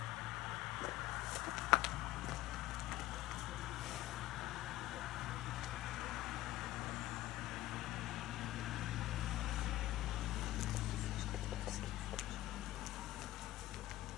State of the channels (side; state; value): right; quieter; 15.8 dB